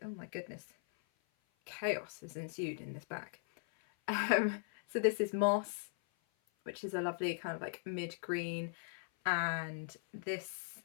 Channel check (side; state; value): right; silent; 52 dB below the other